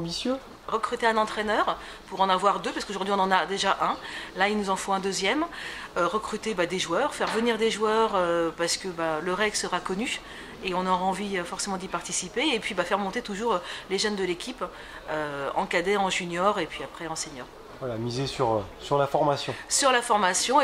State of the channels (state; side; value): identical; both; correlation 1.00